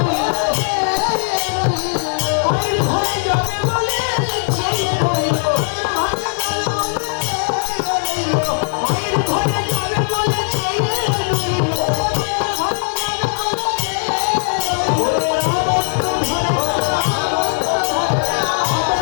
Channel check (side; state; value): right; silent; digital silence